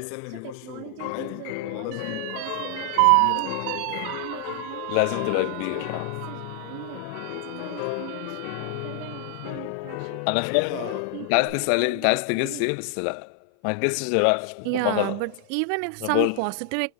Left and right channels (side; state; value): both; different; correlation 0.00